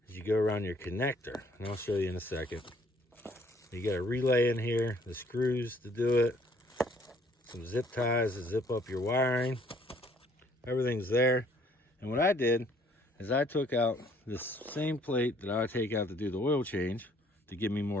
is you go around your connector, and I'll show you in a second. You got a relay in here, the screws to do it, some zip ties to zip up your wiring. Everything's there. And what I did is I took out this same plate that I take out to do the oil change to give me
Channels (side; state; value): both; normal; correlation 0.61